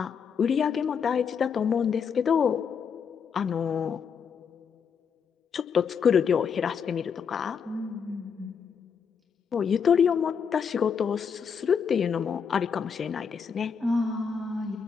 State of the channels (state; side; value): quieter; right; 6.6 dB